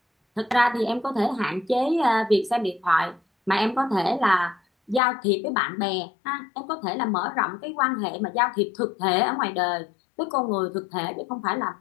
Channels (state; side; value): drops out; right; at 5.0 s